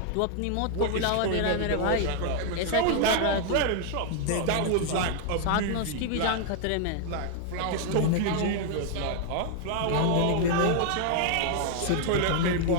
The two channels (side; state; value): both; different; correlation 0.00